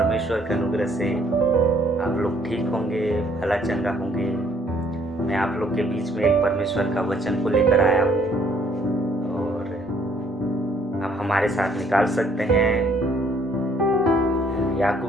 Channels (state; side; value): normal; both; correlation 0.63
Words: के अनुग्रह से आप लोग ठीक होंगे, भला चंगा होंगे। मैं आप लोग के बीच में एक परमेश्वर का वचन को लेकर आया हूँ और आप हमारे साथ निकाल सकते हैं